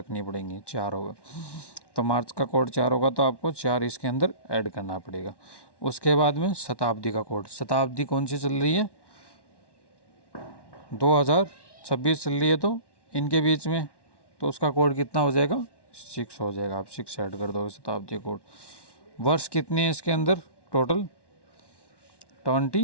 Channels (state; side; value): late; right; 1.1 ms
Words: पड़ेंगी। 4 होगा, तो मार्च का कोड 4 होगा, तो आपको 4 इसके अंदर ऐड करना पड़ेगा। उसके बाद में शताब्दी का कोड, शताब्दी कौन सी चल रही है 2026 चल रही है, तो इनके बीच में तो उसका कोड कितना हो जाएगा 6 हो जाएगा। आप 6 ऐड कर दोगे शताब्दी कोड। वर्ष कितने हैं इसके अंदर टोटल